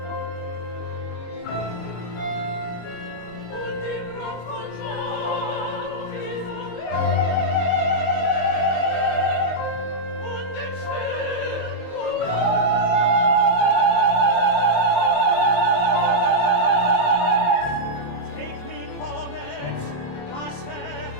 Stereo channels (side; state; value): right; late; 23 ms